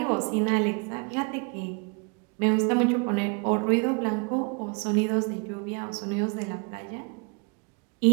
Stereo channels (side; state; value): left; quieter; 34.0 dB